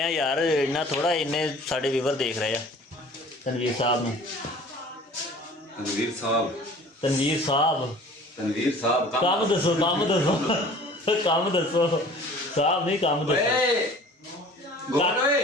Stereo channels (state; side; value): normal; both; correlation 0.47